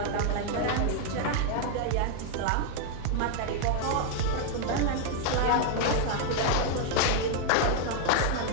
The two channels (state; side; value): different; both; correlation 0.00